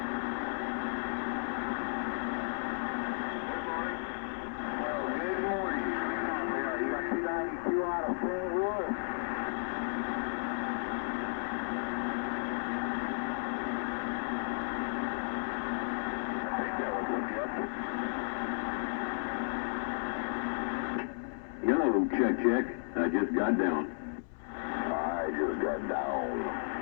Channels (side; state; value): right; silent; 55 dB below the other